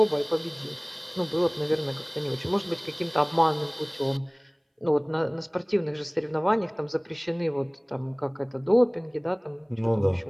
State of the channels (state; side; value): identical; both; correlation 1.00